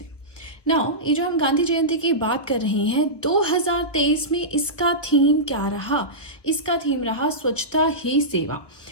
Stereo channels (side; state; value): right; late; 1.1 ms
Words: ने। नाउ, ये जो हम गांधी जयंती की बात कर रहे हैं, 2023 में इसका थीम क्या रहा? इसका थीम रहा स्वच्छता ही सेवा